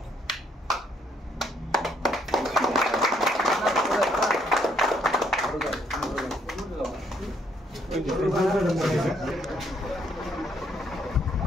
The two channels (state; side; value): normal; both; correlation 0.69